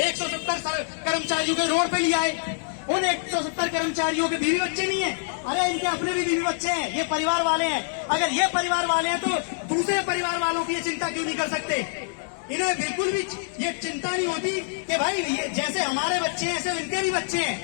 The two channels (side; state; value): right; silent; digital silence